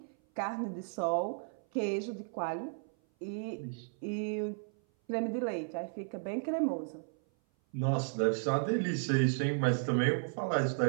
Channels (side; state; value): left; silent; 55 dB below the other